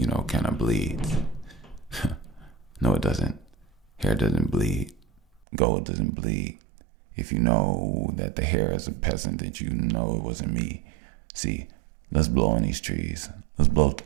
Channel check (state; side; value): drops out; left; at 5.4 s